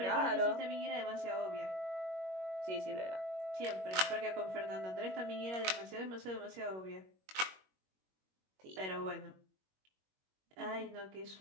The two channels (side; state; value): left; late; 21 ms